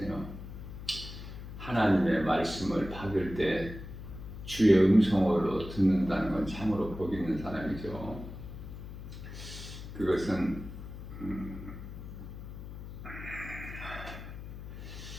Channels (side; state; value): left; noise; hum, 11 dB below the sound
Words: 하나님의 말씀을 받을 때 주의 음성으로 듣는다는 건 참으로 복 있는 사람이죠. 그것은